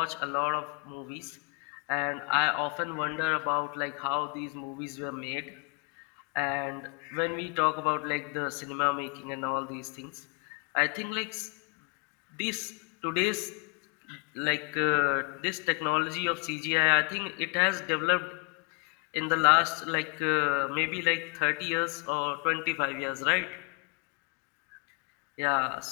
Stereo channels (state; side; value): quieter; right; 34.1 dB